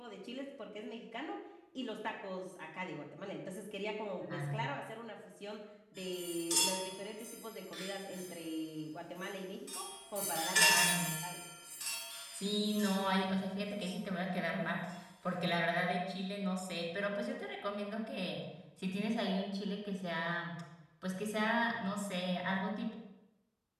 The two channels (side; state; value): both; identical; correlation 1.00